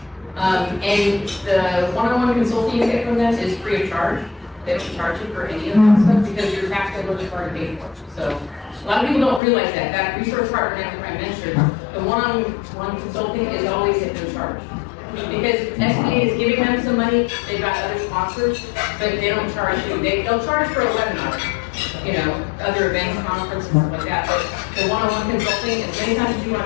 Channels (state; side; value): drops out; right; at 9.4 s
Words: And the one-on-one consulting you get from them is free of charge. They don't charge you for any of that stuff because your tax code is already paid for. So a lot of people don't realize that. That resource partner that I mentioned, the one-on-one consulting is always at no charge. Because SBA is giving them some money, they've got other sponsors, but they don't charge you. They'll charge for a webinar, you know, other events, conferences, stuff like that. But the one-on-one consulting, as many times as you want